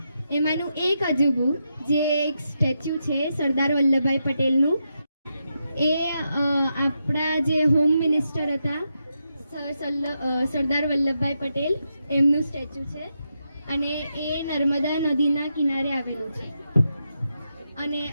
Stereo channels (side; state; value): both; inverted; correlation -0.85